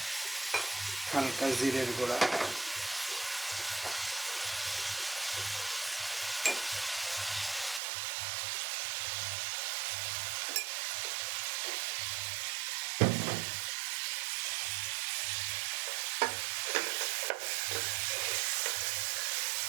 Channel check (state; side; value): drops out; left; at 7.8 s